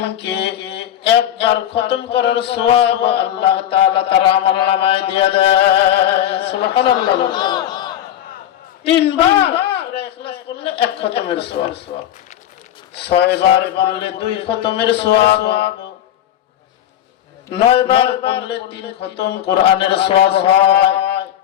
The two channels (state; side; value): quieter; right; 11.4 dB